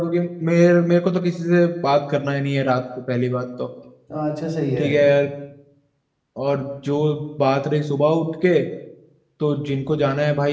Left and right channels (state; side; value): identical; both; correlation 1.00